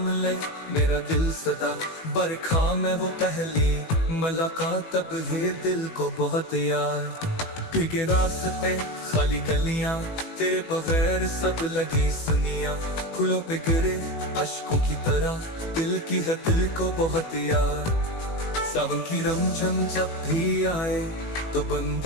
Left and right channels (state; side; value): late; right; 18 ms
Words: ले मेरा दिल सदा। बरखा में वो पहली मुलाकात, तब है दिल को बहुत याद। भीगे रास्ते खाली गलियां, तेरे बगैर सब लगी सुनिया। फूलों पे गिरे अश्कों की तरह, दिल की है दिल को बहुत याद। सावन की रमझम जब भी आए तो बन